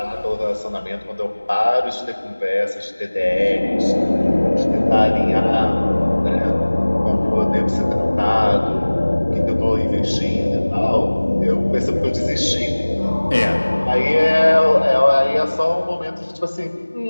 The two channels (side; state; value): both; inverted; correlation -1.00